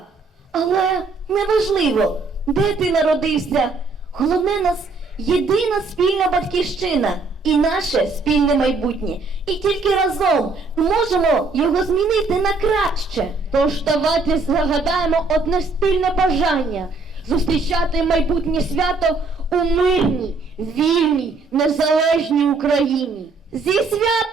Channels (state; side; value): quieter; left; 3.8 dB